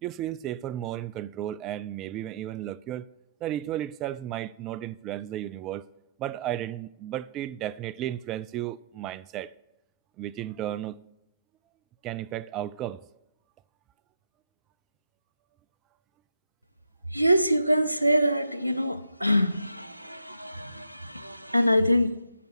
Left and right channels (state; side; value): inverted; both; correlation -0.69